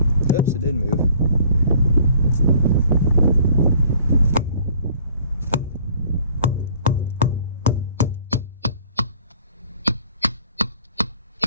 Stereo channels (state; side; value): inverted; both; correlation -0.56